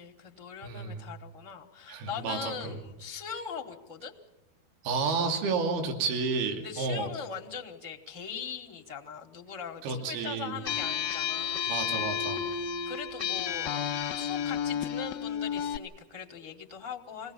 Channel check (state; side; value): late; left; 12 ms